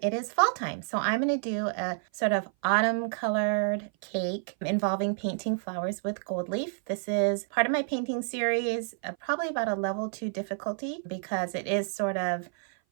it is fall time. So I'm going to do a sort of autumn colored cake involving painting flowers with gold leaf. This is part of my painting series, probably about a level 2 difficulty because it is sort of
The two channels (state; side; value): silent; left; 56 dB below the other